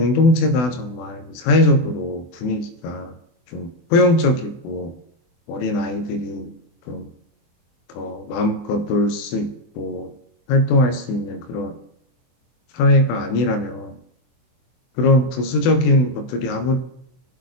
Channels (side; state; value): right; late; 24 ms